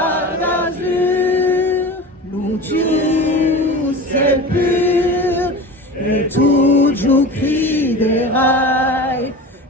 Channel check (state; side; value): normal; both; correlation 0.32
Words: d'azur, lu tiu ciel pur, et tu giù criderai,